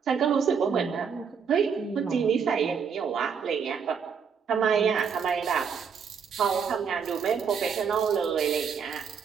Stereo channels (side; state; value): left; quieter; 6.5 dB